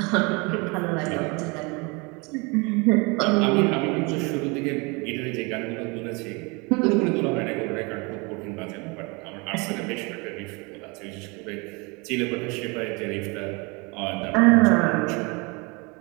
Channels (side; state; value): left; quieter; 28.6 dB